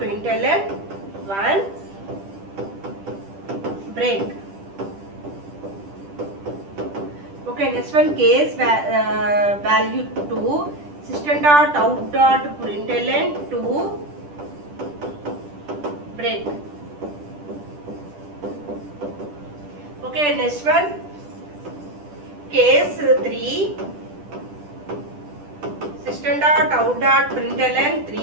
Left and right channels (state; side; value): late; left; 10 ms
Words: 1 break. Okay, next one case value 2. System dot out dot println 2 break. Okay, next one case 3. System dot out dot println